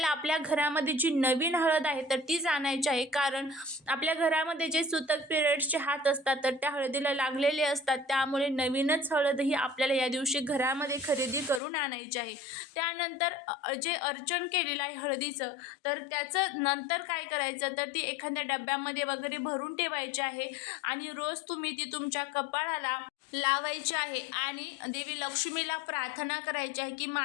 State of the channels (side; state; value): right; drops out; at 11.6 s